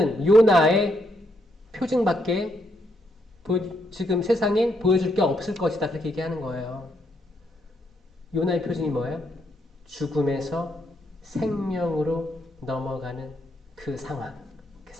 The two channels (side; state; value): both; normal; correlation 0.77